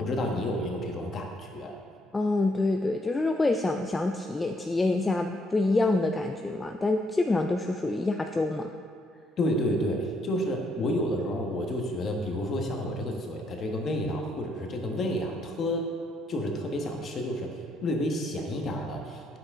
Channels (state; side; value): normal; both; correlation 0.73